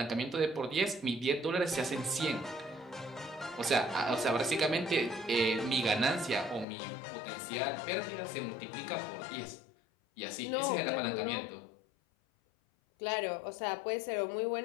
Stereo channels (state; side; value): drops out; right; at 6.7 s